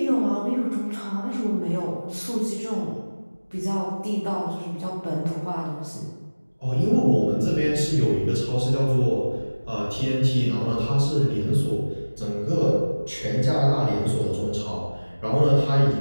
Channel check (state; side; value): inverted; both; correlation -1.00